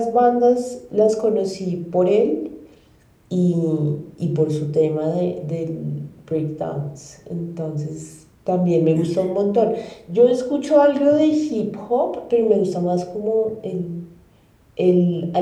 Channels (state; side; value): identical; both; correlation 1.00